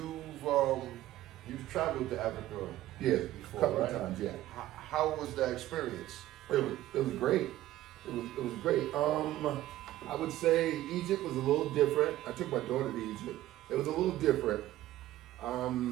traveled to Africa Yeah, before, a couple right? of times, yeah. How was that experience? It was great. It was great. I would say Egypt was a little different. I took my daughter to Egypt. It was a little different. I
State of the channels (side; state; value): left; quieter; 14.6 dB